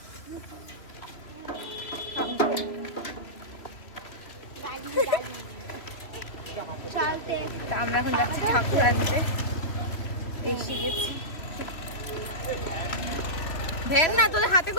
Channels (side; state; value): right; late; 3.0 ms